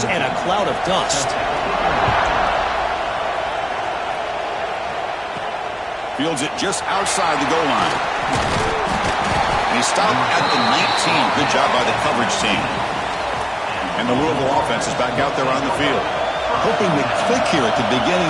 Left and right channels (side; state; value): both; identical; correlation 1.00